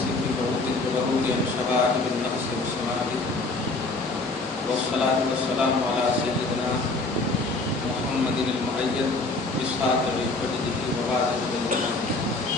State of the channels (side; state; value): right; quieter; 3.2 dB